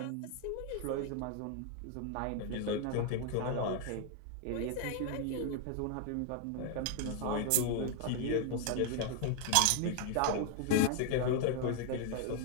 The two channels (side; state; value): both; different; correlation 0.00